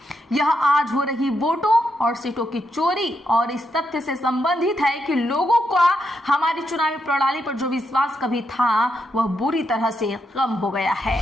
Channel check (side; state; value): both; normal; correlation 0.81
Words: यह आज हो रही वोटों और सीटों की चोरी और इस तथ्य से संबंधित है कि लोगों का हमारी चुनावी प्रणाली पर जो विश्वास कभी था वह बुरी तरह से कम हो गया है।